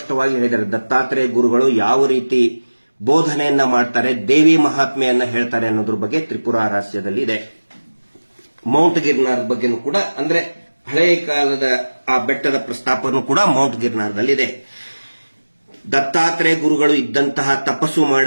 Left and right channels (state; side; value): inverted; both; correlation -1.00